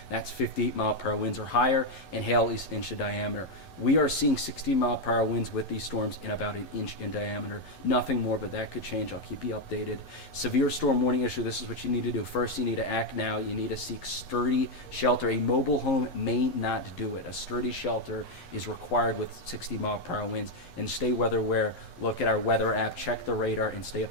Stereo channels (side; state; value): right; late; 11 ms